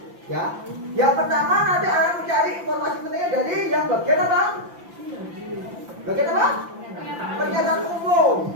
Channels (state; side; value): late; left; 5.8 ms